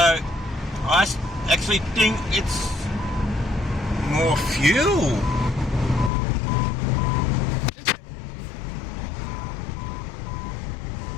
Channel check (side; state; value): right; drops out; at 6.1 s